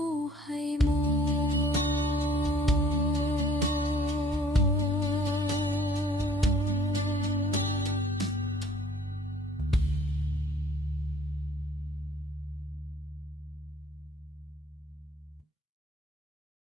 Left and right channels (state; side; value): normal; both; correlation 0.55